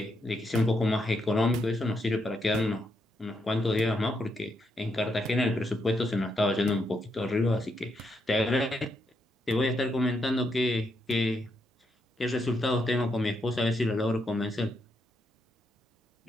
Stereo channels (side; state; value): both; normal; correlation 0.79